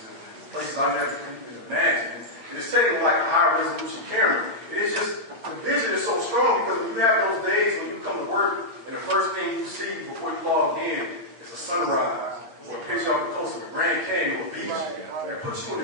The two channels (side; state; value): left; late; 8.6 ms